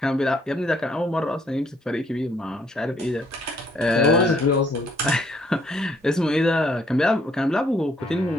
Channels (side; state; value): both; normal; correlation 0.66